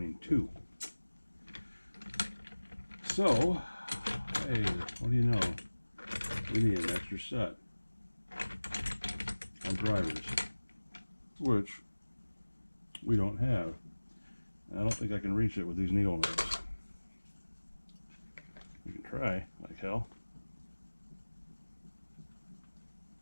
too. So, hey, what do you know? We need an extra set on drivers, which we don't have. I don't think I can reach it with these needle nose. We can try, like hell.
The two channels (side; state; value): both; inverted; correlation -1.00